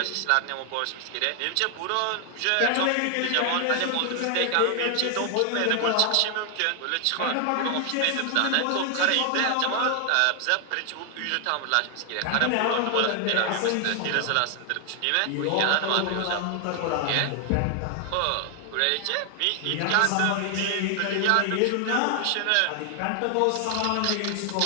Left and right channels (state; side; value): different; both; correlation 0.00